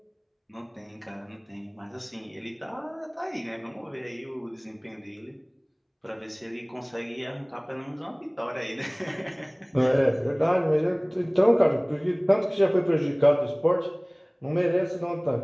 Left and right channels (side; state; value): both; identical; correlation 1.00